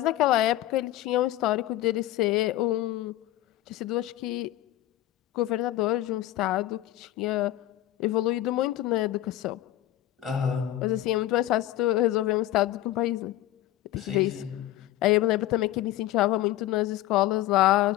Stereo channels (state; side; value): quieter; right; 14.4 dB